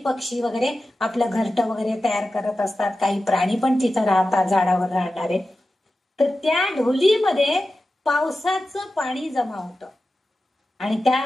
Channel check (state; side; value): normal; both; correlation 0.93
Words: वगैरे आपलं घरटं वगैरे तयार करत असतात. काही प्राणी पण तिथं राहतात, झाडावर राहणारे. तर त्या ढोलीमध्ये पावसाचं पाणी जमा होतं आणि त्या